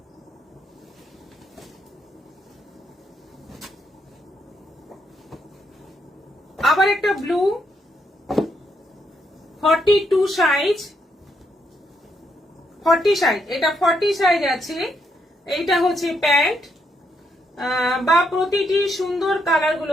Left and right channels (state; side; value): normal; both; correlation 0.77